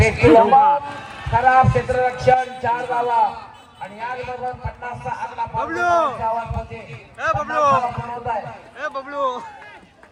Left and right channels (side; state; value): both; identical; correlation 1.00